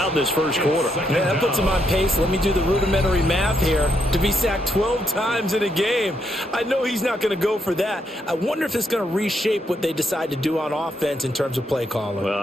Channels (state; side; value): normal; both; correlation 0.78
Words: this first quarter. Yeah, that puts him on pace. Let me do the rudimentary math here. To be sacked 12 times in a game. I know he's not going to go for that. I wonder if it's going to reshape what they decide to do on offense in terms of play calling. Well,